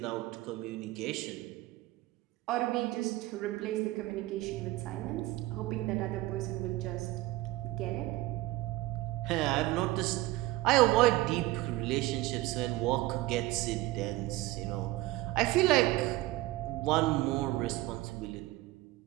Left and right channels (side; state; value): left; quieter; 18.3 dB